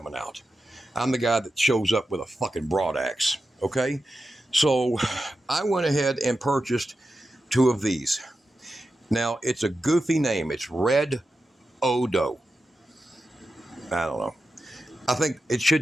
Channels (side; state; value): both; normal; correlation 0.91